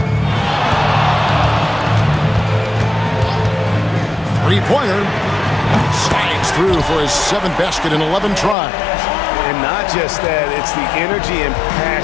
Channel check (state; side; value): drops out; right; at 8.6 s